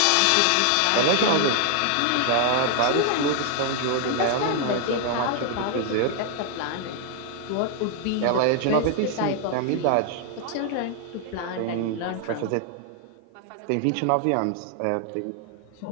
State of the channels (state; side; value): different; both; correlation 0.00